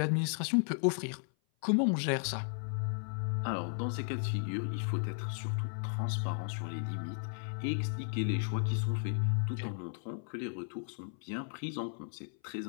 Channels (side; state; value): right; silent; 54 dB below the other